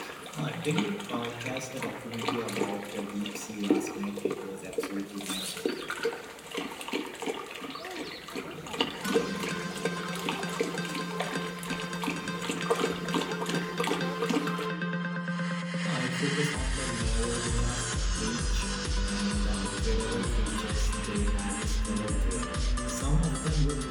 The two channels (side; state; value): both; identical; correlation 1.00